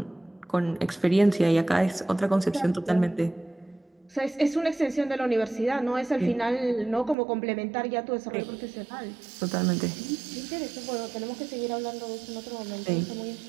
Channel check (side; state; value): left; drops out; at 7.2 s